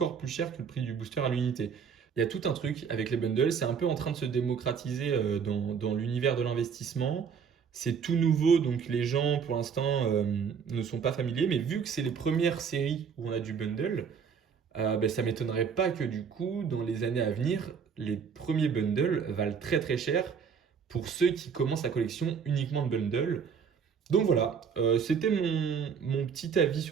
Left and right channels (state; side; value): quieter; left; 6.6 dB